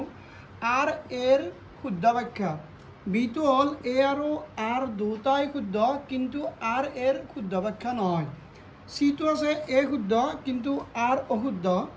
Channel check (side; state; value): both; identical; correlation 1.00